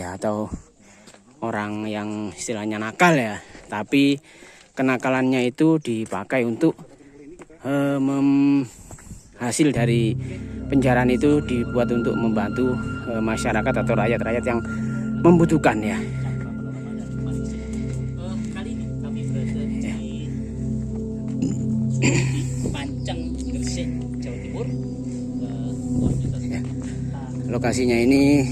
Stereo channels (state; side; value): identical; both; correlation 1.00